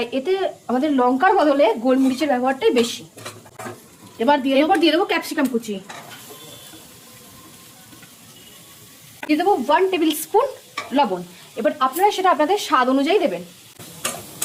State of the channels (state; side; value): identical; both; correlation 1.00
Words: এতে আমাদের লঙ্কার বদলে গোলমরিচের ব্যবহারটাই বেশি। এবার দিয়ে দেবো ক্যাপসিকাম কুচি। দিয়ে দেবো 1 টেবিল স্পুন লবণ। এবার আপনারা সেটা আপনাদের স্বাদ অনুযায়ী দেবেন।